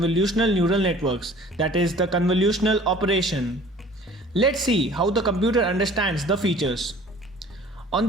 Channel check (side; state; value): both; normal; correlation 0.49